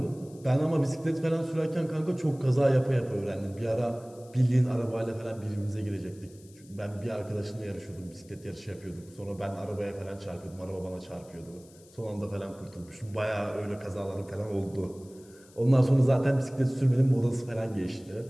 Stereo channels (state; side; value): noise; left; hiss, 26 dB below the sound